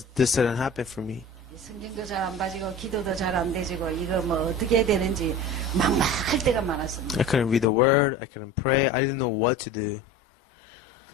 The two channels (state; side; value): drops out; right; at 7.7 s